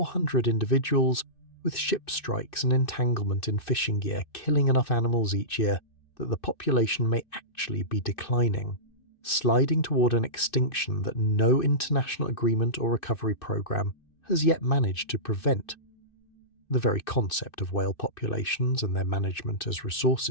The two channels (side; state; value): right; late; 2.6 ms